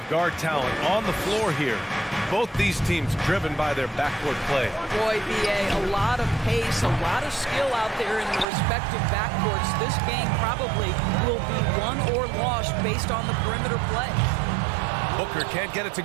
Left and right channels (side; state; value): left; drops out; at 8.5 s